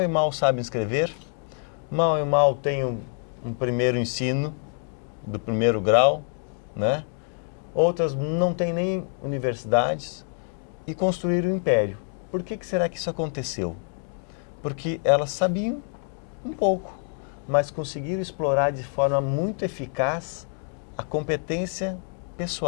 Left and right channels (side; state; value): right; silent; 55 dB below the other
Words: e mal sabem escrever, mal e mal têm um primeiro ensino do primeiro grau, né? Outras não têm nem universidades e construíram um império. Por que será que isso aconteceu? Porque elas sabiam um pouco, mas conseguiram explorar de forma muito eficaz a competência